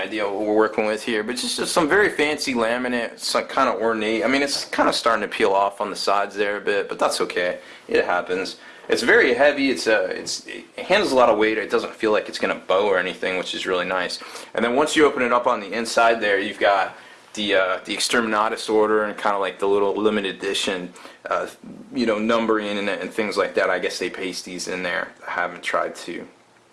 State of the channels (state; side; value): identical; both; correlation 1.00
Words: of what we're working with here, but just some very fancy laminate. It's like kind of ornate. I mean, it's kind of starting to peel off on the sides there a bit, but that's okay. It happens. It's very heavy. It handles a lot of weight. It doesn't feel like it's going to bow or anything, which is really nice. And then once you open it up on the inside there, you've got the Exterminatus order and kind of like the little limited edition, you know, numbering and things like that. I guess they paste these in there. I haven't tried to